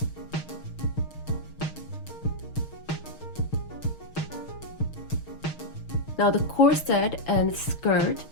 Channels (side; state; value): right; late; 6.4 ms